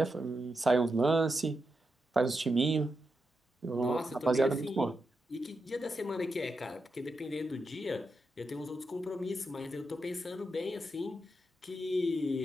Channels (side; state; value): both; normal; correlation 0.86